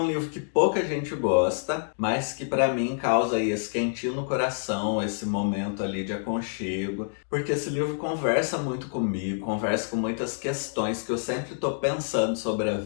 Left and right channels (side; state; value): right; silent; digital silence